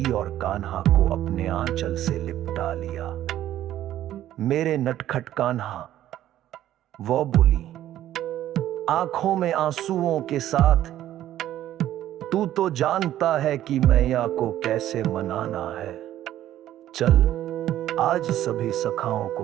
और कान्हा को अपने आंचल से लिपटा लिया। मेरे नटखट कान्हा, वो बोली, आंखों में आंसुओं के साथ, तू तो जानता है कि मैया को कैसे मनाना है। चल, आज सभी सखाओं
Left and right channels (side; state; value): left; quieter; 12.7 dB